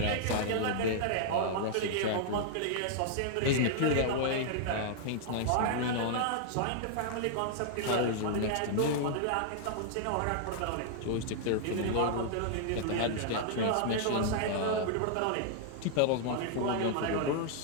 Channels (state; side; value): different; both; correlation -0.01